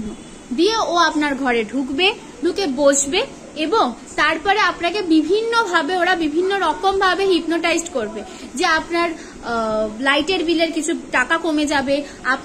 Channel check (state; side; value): identical; both; correlation 1.00